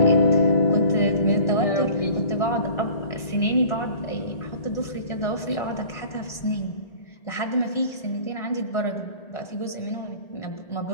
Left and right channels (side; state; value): right; late; 1.4 ms